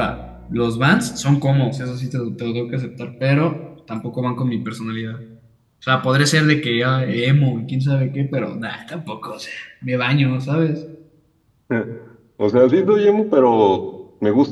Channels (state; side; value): identical; both; correlation 1.00